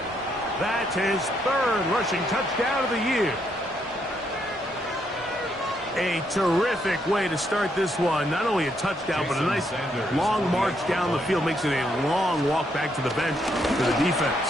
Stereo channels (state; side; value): normal; both; correlation 0.75